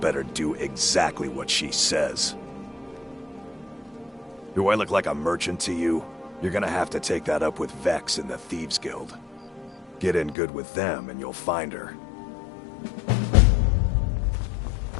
do exactly what she says. Do I look like a merchant to you? You're gonna have to take that up with Vex in the Thieves Guild. Get in good with them and you'll find her.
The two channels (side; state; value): right; drops out; at 10.4 s